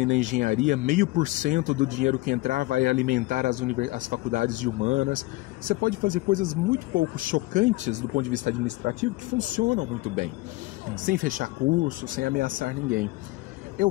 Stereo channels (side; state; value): right; quieter; 20.3 dB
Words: na engenharia, 0,5% do dinheiro que entrar vai alimentar as faculdades de humanas. Você pode fazer coisas muito pouco chocantes do ponto de vista administrativo que funcionam muito bem, sem fechar curso, sem ameaçar ninguém.